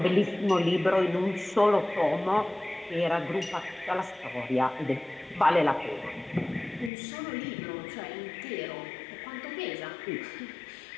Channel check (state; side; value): drops out; right; at 6.9 s